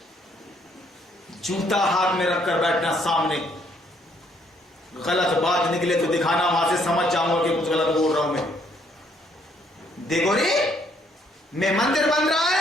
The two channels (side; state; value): both; normal; correlation 0.68